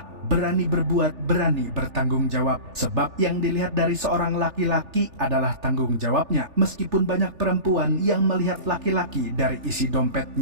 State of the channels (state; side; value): late; left; 3.4 ms